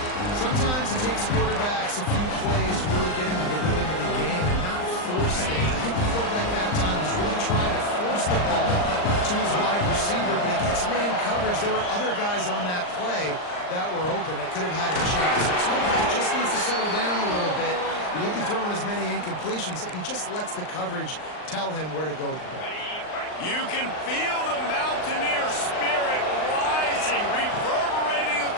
Sometimes it takes quarterbacks a few plays to really get into the rhythm of the game and not force things. I think the quarterback that time was really trying to force the ball to his wide receiver, but against man coverage, there were other guys on that play that were open that could have had a chance. So this quarterback just needs to settle down a little bit. He won't be throwing as many incompletions if he just lets the coverage tell him where to go with the ball. You can feel the Mountaineer spirit rising, reverberating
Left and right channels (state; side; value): late; right; 39 ms